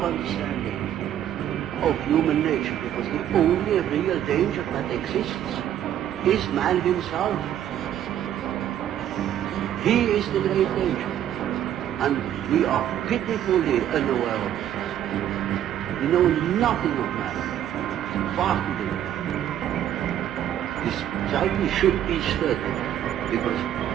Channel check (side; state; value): left; quieter; 10.9 dB